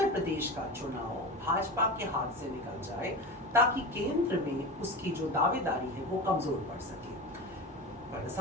प्रदेश का चुनाव भाजपा के हाथ से निकल जाए, ताकि केंद्र में उसकी जो दावेदारी है वो कमजोर पड़ सके। पर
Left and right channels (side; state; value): both; normal; correlation 0.27